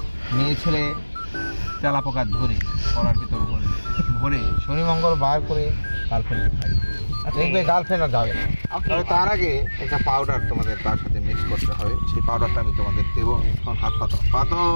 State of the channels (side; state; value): both; inverted; correlation -1.00